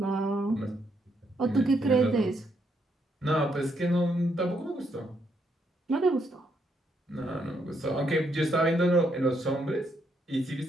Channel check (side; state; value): both; normal; correlation 0.75